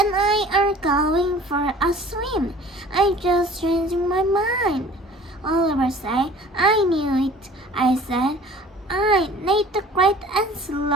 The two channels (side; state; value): both; normal; correlation 0.48